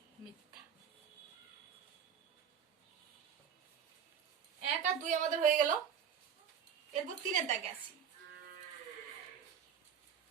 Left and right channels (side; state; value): left; quieter; 7.9 dB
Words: মিথ্যা। 1 আর 2 আমাদের হয়ে গেল। এরপর 3-এর দাগে আসি।